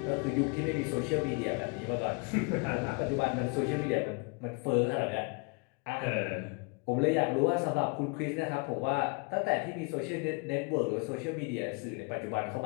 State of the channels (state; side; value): quieter; right; 31.3 dB